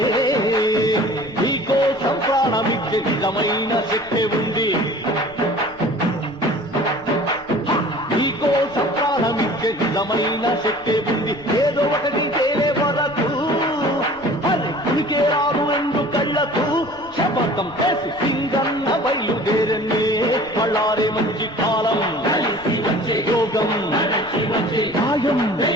నీకోసం ప్రాణమిచ్చే నిజమైన శక్తి ఉంది నీకోసం ప్రాణమిచ్చే నిజమైన శక్తి ఉంది ఏదో ఒకటి తేలే వరకు ఉనికే రాదు ఎందు కళ్ళకు శపథం చేసి సింగన్న బయలుదేరనే బళ్ళారే మంచి కాలం యోగం న్యాయం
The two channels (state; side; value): noise; left; rumble, 24 dB below the sound